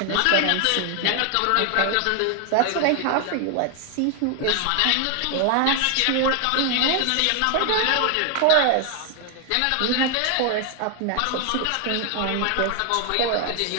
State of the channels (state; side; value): different; both; correlation 0.00